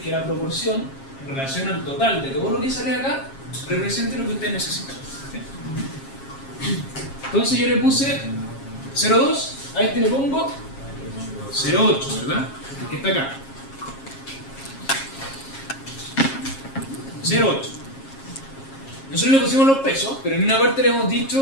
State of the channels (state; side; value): late; right; 7.4 ms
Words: que la proporción en relación al total de todo lo que sale acá represente lo que ustedes necesitan. ¿Sí? Entonces yo le puse 0.2, a este le pongo 0.8, ¿verdad? El que está acá. 0.8. Nosotros le pusimos los pesos, pero en una parte le hemos